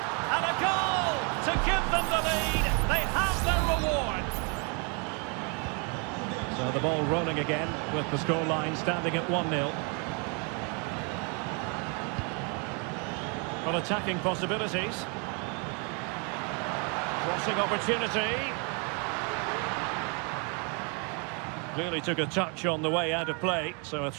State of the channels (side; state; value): left; quieter; 35.5 dB